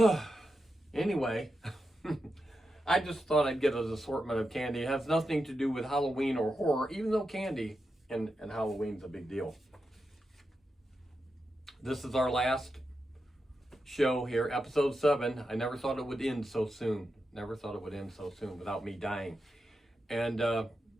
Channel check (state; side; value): normal; both; correlation 0.88